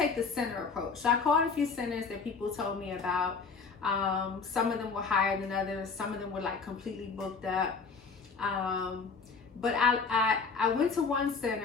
the center approach. So I called a few centers that people told me about. Some of them were higher than others. Some of them were like completely booked up. But I went to one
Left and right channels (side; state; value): right; quieter; 5.0 dB